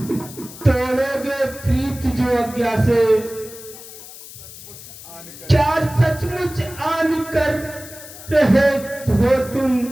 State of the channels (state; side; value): noise; left; hiss, 16 dB below the sound